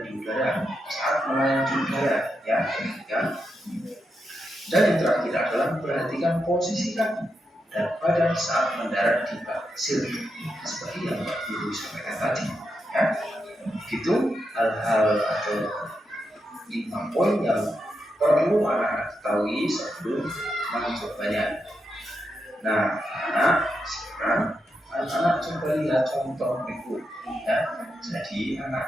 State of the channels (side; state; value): both; normal; correlation 0.85